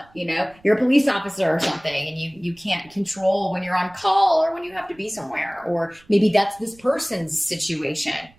police officer or something, and you can't control when you're on call or when you have to be somewhere. Or maybe that's this person's situation.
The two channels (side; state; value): right; noise; rumble, 29 dB below the sound